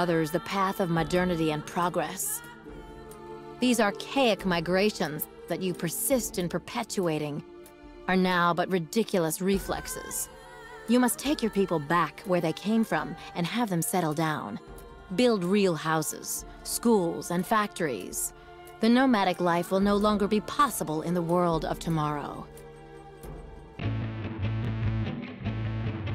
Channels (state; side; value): identical; both; correlation 1.00